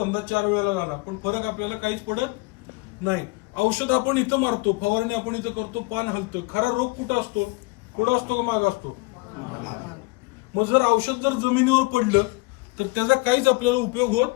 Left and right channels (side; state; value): right; quieter; 24.6 dB